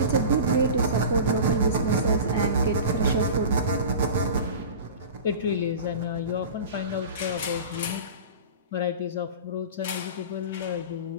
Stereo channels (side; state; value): both; inverted; correlation -0.34